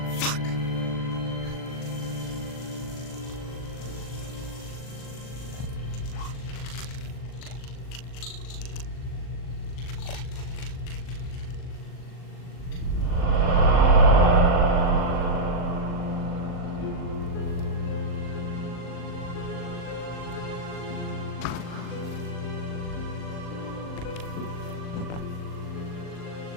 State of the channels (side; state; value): right; late; 39 ms